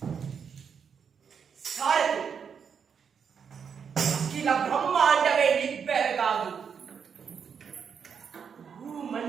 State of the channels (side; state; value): left; quieter; 6.9 dB